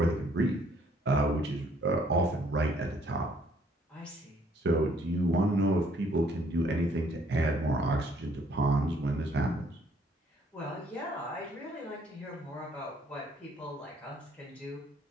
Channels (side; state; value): both; normal; correlation 0.64